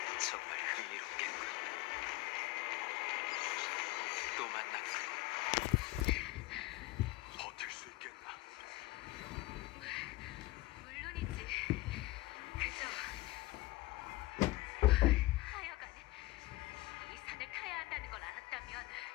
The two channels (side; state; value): right; quieter; 19.4 dB